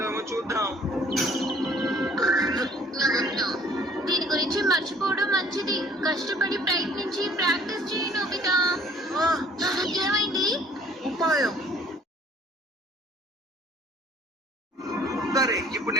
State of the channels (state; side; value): normal; both; correlation 0.56